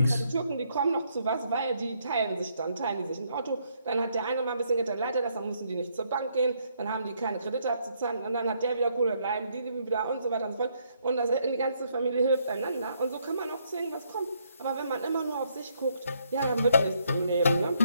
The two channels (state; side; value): inverted; both; correlation -0.72